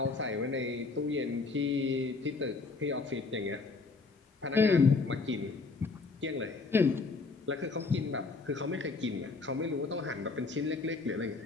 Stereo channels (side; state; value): right; quieter; 4.1 dB